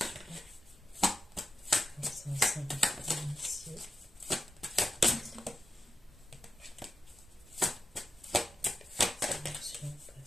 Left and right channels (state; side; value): normal; both; correlation 0.90